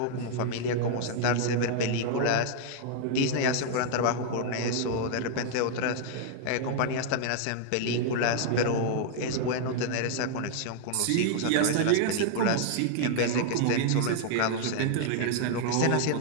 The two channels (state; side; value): different; both; correlation 0.00